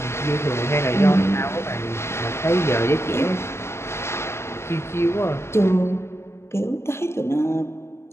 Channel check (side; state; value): right; late; 0.13 ms